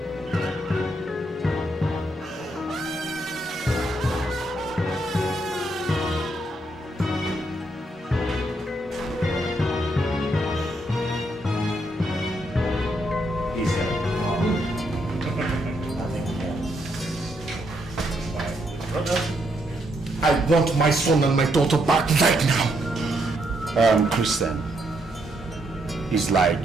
I want my son and my daughter back right now. Christian, it's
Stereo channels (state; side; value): normal; both; correlation 0.76